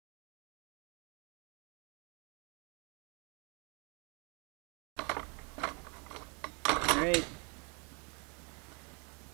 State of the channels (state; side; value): quieter; left; 34.1 dB